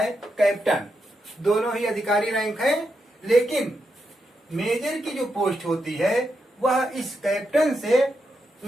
कैप्टन। दोनों ही अधिकारी रैंक हैं, लेकिन मेजर की जो पोस्ट होती है वह इस कैप्टन से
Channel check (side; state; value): both; normal; correlation 0.84